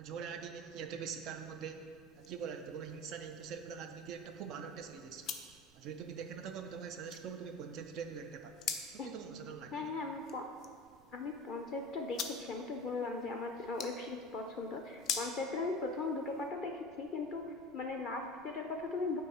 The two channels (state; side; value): noise; right; rumble, 25 dB below the sound